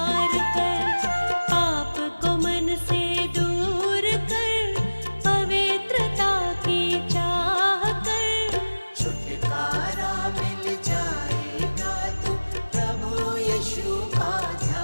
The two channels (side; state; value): both; inverted; correlation -1.00